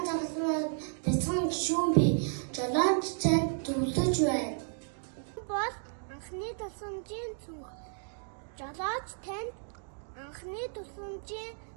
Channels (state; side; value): silent; left; 56 dB below the other